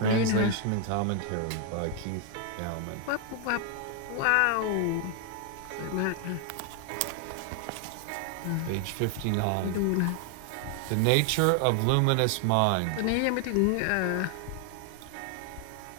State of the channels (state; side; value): different; both; correlation 0.00